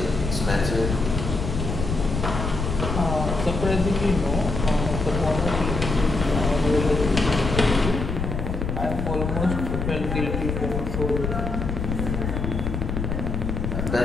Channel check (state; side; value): noise; left; rumble, 3 dB below the sound